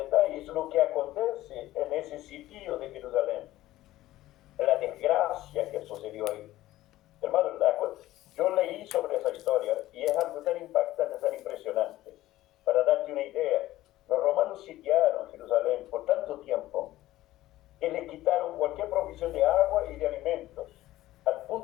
lo que acontece en ese sitio de Jerusalén, la desgracia que sucedió ahí. Hermano, yo leí sobre esa historia y es algo tan impactante, tan impresionante. Para darte una idea, los romanos sitiaron Jerusalén por tanto tiempo que le quitaron cualquier provisión de agua y de alimentos, al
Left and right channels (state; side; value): quieter; right; 15.6 dB